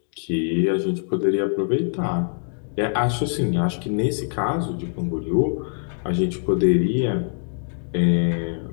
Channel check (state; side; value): silent; right; digital silence